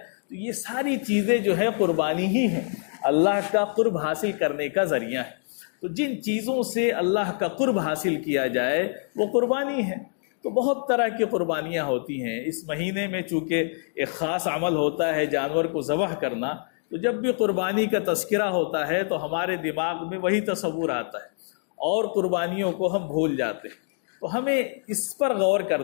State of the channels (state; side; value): silent; right; 61 dB below the other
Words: تو یہ ساری چیزیں جو ہے قربانی ہی ہیں، اللہ کا قرب حاصل کرنے کا ذریعہ ہے۔ تو جن چیزوں سے اللہ کا قرب حاصل کیا جائے وہ قربانی ہے۔ تو بہت طرح کی قربانیاں ہوتی ہیں۔ اس مہینے میں چونکہ ایک خاص عمل ہوتا ہے جانور کو ذبح کرنا، تو جب بھی قربانی کا تذکرہ ہوتا ہے تو ہمارے دماغ میں وہی تصور آتا ہے اور قربانیوں کو ہم بھول جاتے ہیں۔ تو ہمیں اس پر غور